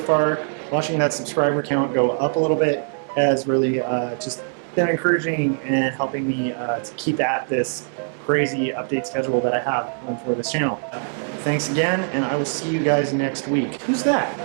Watching that subscriber count go up a little bit has really just been encouraging and helping me to keep at this crazy update schedule that I have for this channel. Thanks again, and I will see you guys next week. Who's that?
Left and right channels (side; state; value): left; silent; 64 dB below the other